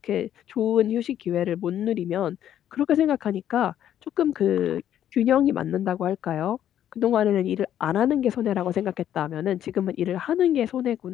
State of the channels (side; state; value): right; quieter; 10.8 dB